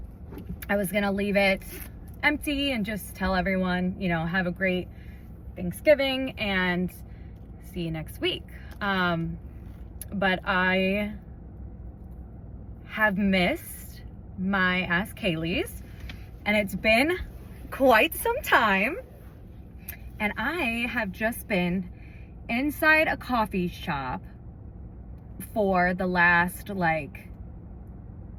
I was going to leave it empty and just tell everyone, have a great Thanksgiving and see you next week. But I have missed my Ask Kaylee's, and it's been quite some time. And I have just been inside a coffee shop for the last 8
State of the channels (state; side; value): identical; both; correlation 1.00